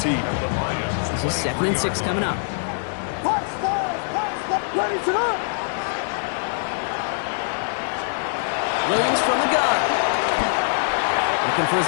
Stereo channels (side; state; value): right; silent; digital silence